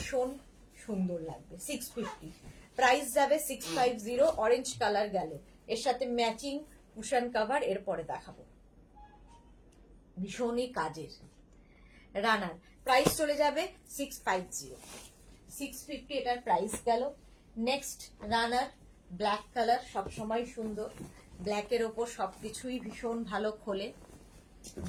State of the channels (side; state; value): both; identical; correlation 1.00